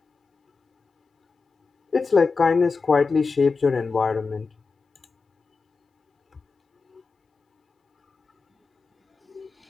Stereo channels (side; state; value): right; quieter; 4.5 dB